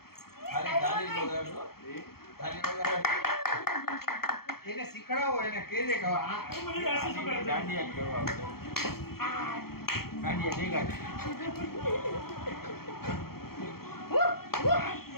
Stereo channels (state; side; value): late; right; 0.94 ms